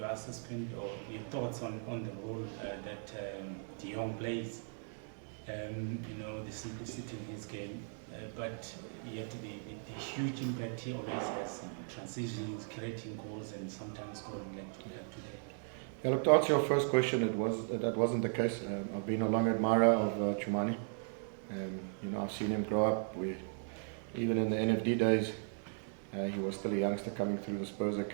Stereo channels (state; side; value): silent; left; 53 dB below the other